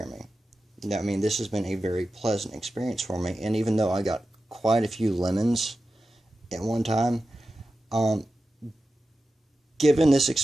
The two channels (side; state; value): both; normal; correlation 0.92